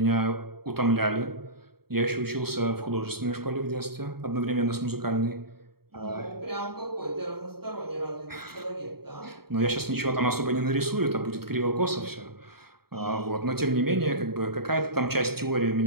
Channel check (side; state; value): left; late; 0.95 ms